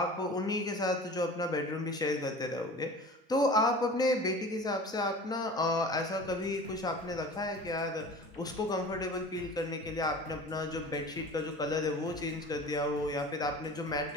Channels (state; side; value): normal; both; correlation 0.39